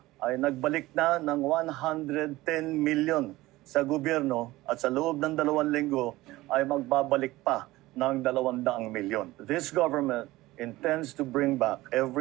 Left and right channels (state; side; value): quieter; left; 18.4 dB